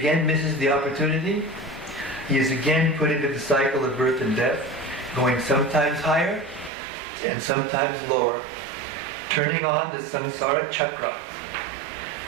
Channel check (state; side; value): drops out; left; at 6.7 s